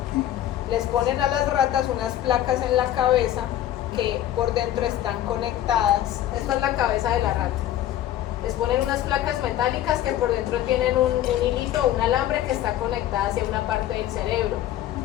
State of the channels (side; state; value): right; quieter; 12.6 dB